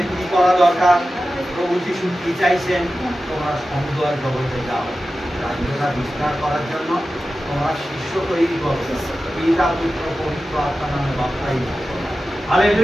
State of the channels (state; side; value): normal; both; correlation 0.93